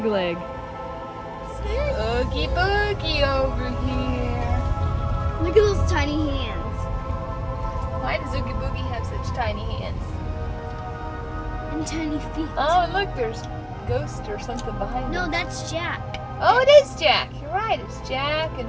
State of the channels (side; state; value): both; identical; correlation 1.00